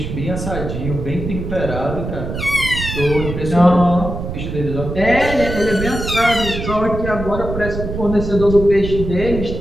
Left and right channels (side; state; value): right; noise; rumble, 6 dB below the sound